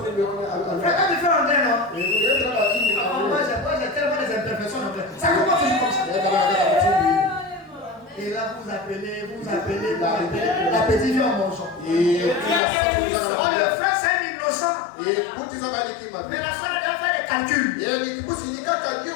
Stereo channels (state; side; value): drops out; right; at 12.6 s